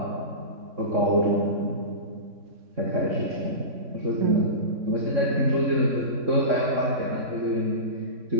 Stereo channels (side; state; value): left; late; 3.6 ms